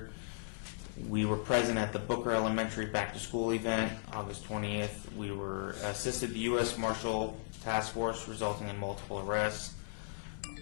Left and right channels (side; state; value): right; silent; 53 dB below the other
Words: we were present at the Booker Elementary Back to School event. August 20th, we were assisted the U.S. Marshal Task Force, resulting in multiple arrests.